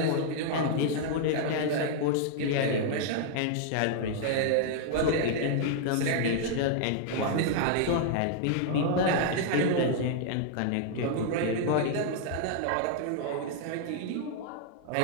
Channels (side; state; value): both; different; correlation 0.00